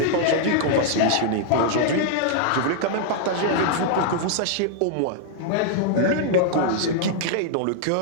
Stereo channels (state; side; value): different; both; correlation -0.01